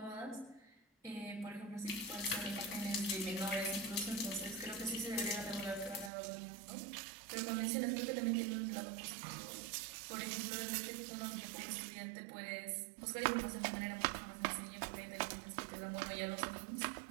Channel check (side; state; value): left; drops out; at 6.1 s